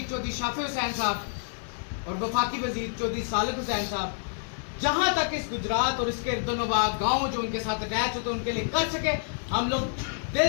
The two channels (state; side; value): silent; right; digital silence